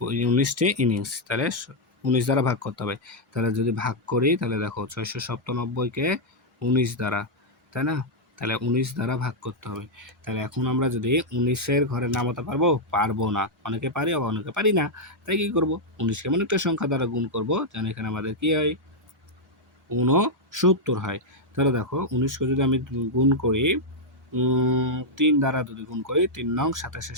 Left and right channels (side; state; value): both; normal; correlation -0.03